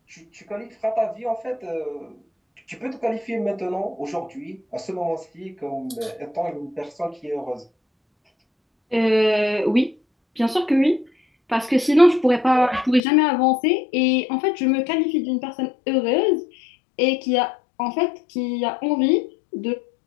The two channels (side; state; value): right; drops out; at 13.0 s